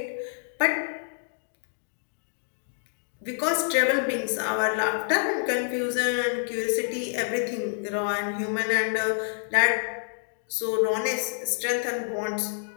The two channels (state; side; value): silent; right; digital silence